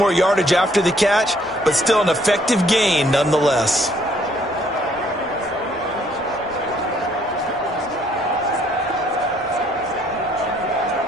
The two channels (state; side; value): normal; both; correlation 0.65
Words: yardage after the catch, but still an effective gain nonetheless.